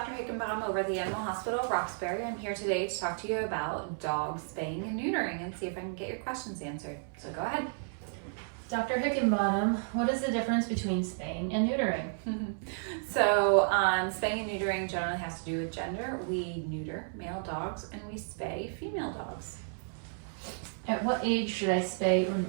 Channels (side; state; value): left; silent; 56 dB below the other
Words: Hickenbottom over at the Animal Hospital of Roxbury. I'm here today to talk to you about dog spaying and neutering and see if I can get your questions answered. So go ahead. Dr. Hickenbottom, what is the difference between spaying and neutering? So spaying and neutering generally has to do with gender. We neuter male dogs and we spay female dogs. At what age should I spay or